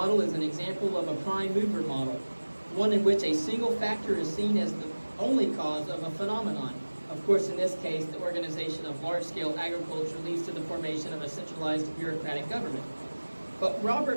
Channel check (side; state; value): both; inverted; correlation -1.00